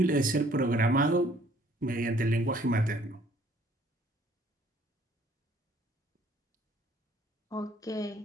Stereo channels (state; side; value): normal; both; correlation 0.59